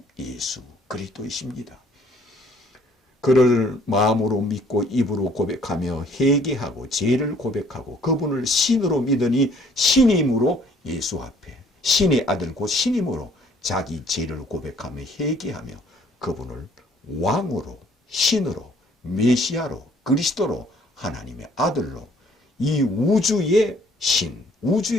예수 그리스도이십니다. 그를 마음으로 믿고 입으로 고백하며 회개하고 죄를 고백하고 그분을 신으로 믿으니 신임으로 예수 앞에 신의 아들 곧 신임으로 자기 죄를 고백하며 회개하며 그분을 왕으로 신으로 메시아로 그리스도로 하나님의 아들로 이 우주의 신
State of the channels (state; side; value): normal; both; correlation 0.60